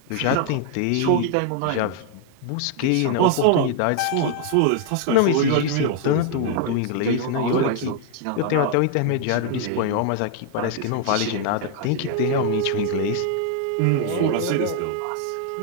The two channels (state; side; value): different; both; correlation 0.00